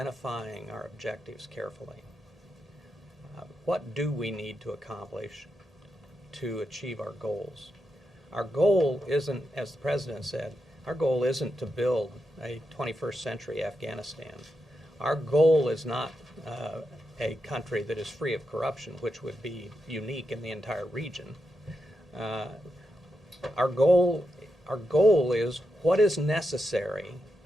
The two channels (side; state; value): both; normal; correlation 0.86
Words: our objectives carefully. What do we need to accomplish to achieve our goals? Our goal isn't, as the President said, our goal isn't to build a 21st century Afghanistan. Our goal is not a country that is free of corruption, which would be unique in the entire region. Our goal is what is necessary,